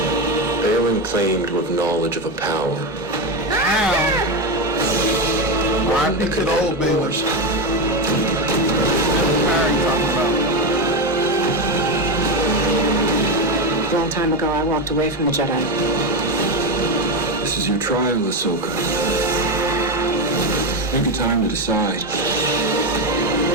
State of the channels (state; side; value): normal; both; correlation 0.12